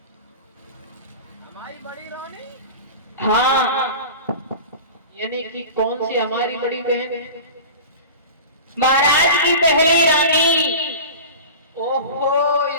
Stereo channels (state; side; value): inverted; both; correlation -0.34